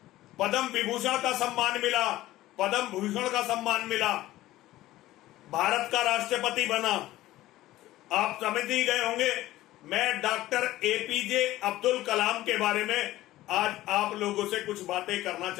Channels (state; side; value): quieter; right; 16.0 dB